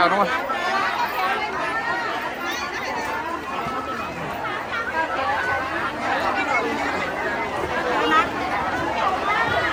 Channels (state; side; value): identical; both; correlation 1.00